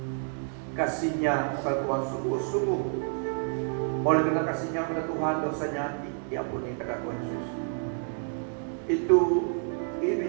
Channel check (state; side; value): silent; left; 59 dB below the other